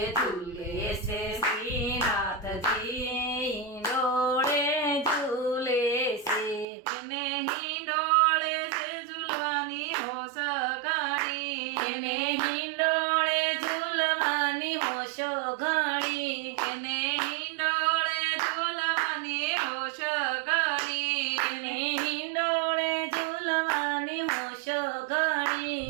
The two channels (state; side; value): drops out; left; at 6.7 s